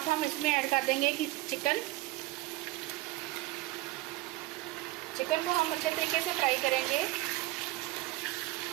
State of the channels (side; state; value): left; quieter; 18.8 dB